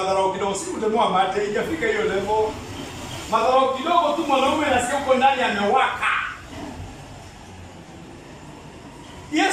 kidogo, si kutemewa mate ikafika hiyo level. Madharau kidogo tu mwanaume anasikia uko ndani amewaka.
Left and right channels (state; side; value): identical; both; correlation 1.00